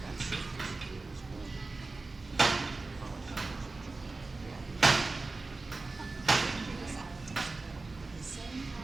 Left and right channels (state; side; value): quieter; left; 3.5 dB